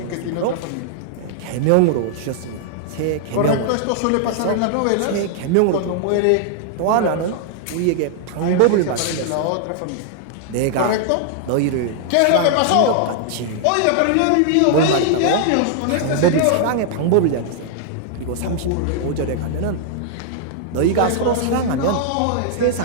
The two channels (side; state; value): both; different; correlation -0.01